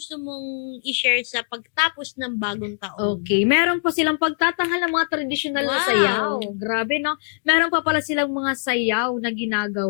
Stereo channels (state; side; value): silent; right; digital silence